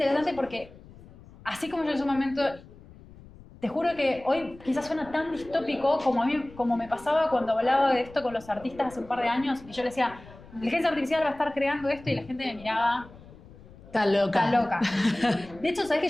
porque, así como yo en su momento, te juro que hoy quizás suena tan distópico como me pasaba cuando hablaba de esto con los artistas hace un par de años, y yo les decía, la inteligencia artificial va a estar creando esto, y la gente me miraba, Está loca. está loca. De hecho, ¿sabes que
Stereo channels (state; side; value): noise; left; rumble, 21 dB below the sound